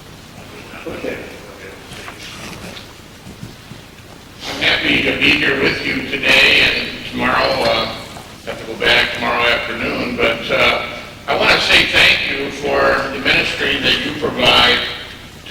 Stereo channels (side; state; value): both; identical; correlation 1.00